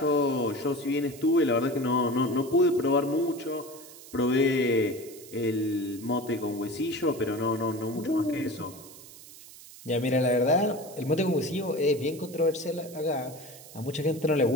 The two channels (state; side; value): noise; right; hiss, 18 dB below the sound